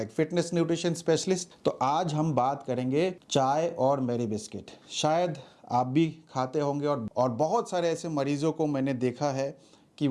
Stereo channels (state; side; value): identical; both; correlation 1.00